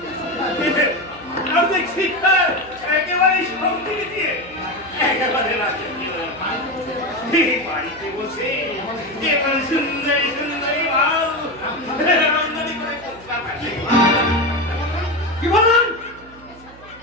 আর দেখছি একেবারে সঙ্গে দিয়ে একেবারে রাখে বাড়িতে বসে একেবারে সুন্দরী সুন্দরী মাল আমদানি করে কোথা থাকে কি বললেন?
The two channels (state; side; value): noise; right; hum, 21 dB below the sound